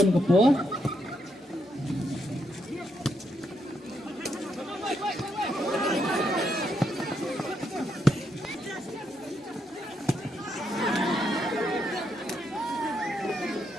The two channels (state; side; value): normal; both; correlation 0.78